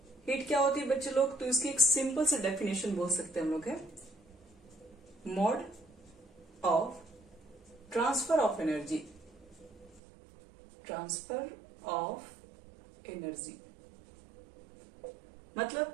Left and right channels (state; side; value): drops out; left; at 10.0 s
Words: हीट क्या होती है बच्चे लोग, तो इसकी एक सिंपल से डेफिनेशन बोल सकते हैं हम लोग है mode of transfer of energy. Transfer of energy